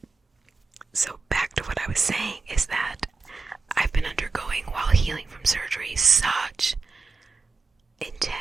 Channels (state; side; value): quieter; left; 4.5 dB